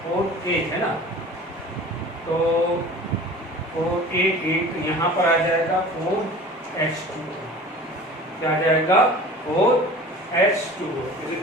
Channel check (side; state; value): both; normal; correlation 0.41